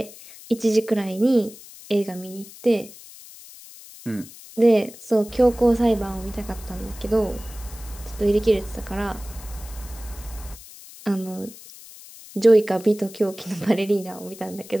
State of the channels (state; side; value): noise; left; hiss, 18 dB below the sound